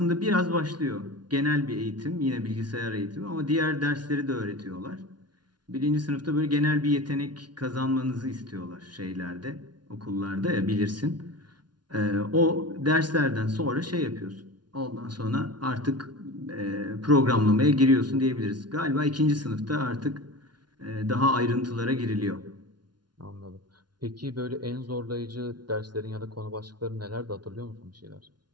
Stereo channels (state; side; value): late; left; 0.70 ms